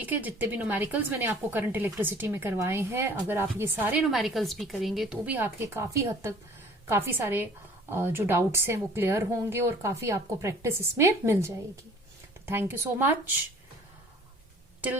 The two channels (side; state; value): both; normal; correlation 0.51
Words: है, जितने भी न्यूमेरिकल्स मैंने आपको करंट इलेक्ट्रिसिटी में करवाए हैं, अगर आप ये सारे न्यूमेरिकल्स भी करेंगे तो भी आपके काफी हद तक काफी सारे जो डाउट्स हैं वो क्लियर होंगे और काफी आपको प्रैक्टिस इसमें मिल जाएगी। तो thank you so much.